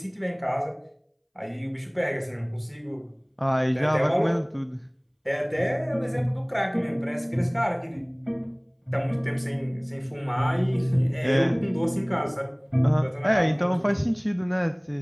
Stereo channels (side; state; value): both; identical; correlation 1.00